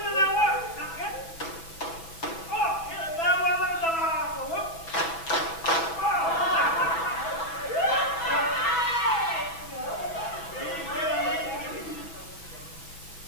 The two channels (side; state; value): right; late; 6.1 ms